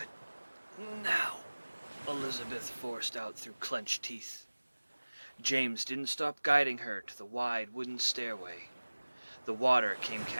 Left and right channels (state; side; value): inverted; both; correlation -1.00